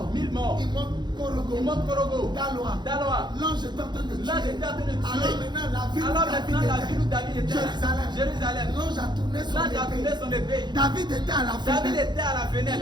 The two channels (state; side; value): late; left; 0.21 ms